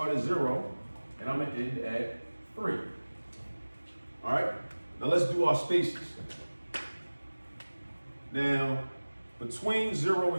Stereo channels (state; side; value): inverted; both; correlation -1.00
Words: at 0 and I'm gonna end at 3. All right? Now let's do our spaces. Now, between 0